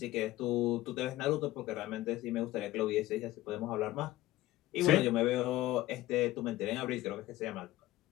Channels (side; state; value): right; quieter; 16.3 dB